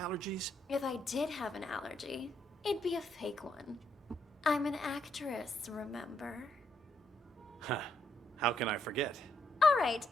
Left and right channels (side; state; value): both; normal; correlation 0.75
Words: If I did have an allergy, it'd be a fake one. I'm an actress, remember? Huh. How can I forget? All right,